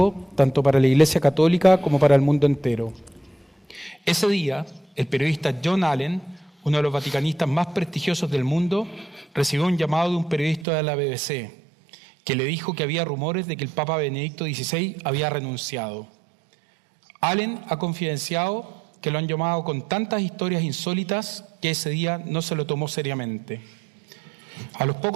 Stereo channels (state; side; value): drops out; left; at 10.7 s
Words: tanto para la Iglesia Católica como para el mundo entero. Ese día, el periodista John Allen, uno de los vaticanistas más prestigiosos del mundo, recibió un llamado de un periodista de la BBC, que le dijo que había rumores de que el Papa Benedicto XVI había renunciado. Allen ha confidenciado que lo han llamado con tantas historias insólitas que ese día no se lo tomó seriamente. A los